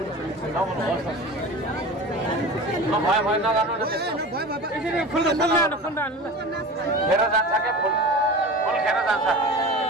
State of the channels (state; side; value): normal; both; correlation 0.34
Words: नबोल्नुहोस् न भयो नगर्नु न त्यस्तो खेर जान्छ क्या फुल खेर जान्छ